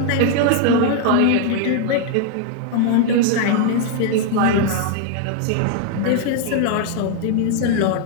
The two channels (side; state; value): both; different; correlation 0.00